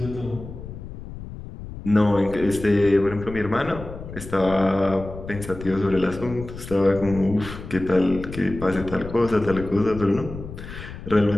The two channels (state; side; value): noise; left; rumble, 12 dB below the sound